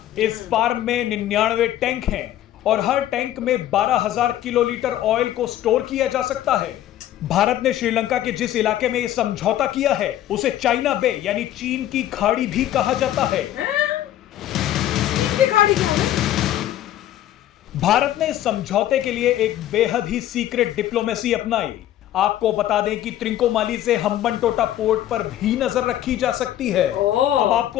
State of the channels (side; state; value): right; quieter; 12.7 dB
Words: इस फार्म में 99 टैंक हैं और हर टैंक में 12,000 किलोलीटर ऑयल को स्टोर किया जा सकता है। भारत ने श्रीलंका के जिस इलाके में यह समझौता किया है उसे चाइना बे यानी चीन की खाड़ी भी कहा जाता है। भारत ने इस समझौते के लिए एक बेहद ही सीक्रेट डिप्लोमेसी अपनाई। आपको बता दें कि त्रिंकोमाली से हम्बनटोटा पोर्ट पर भी नजर रखी जा सकती है। अब